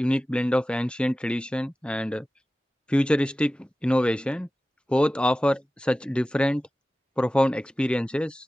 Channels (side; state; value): both; normal; correlation 0.96